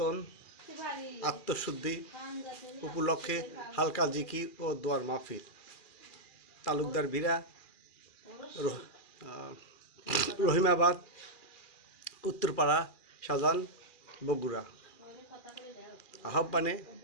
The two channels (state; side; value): late; right; 2.4 ms